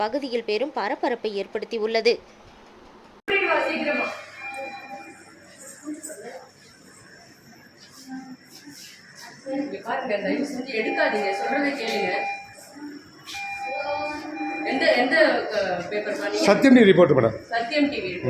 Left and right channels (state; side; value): identical; both; correlation 1.00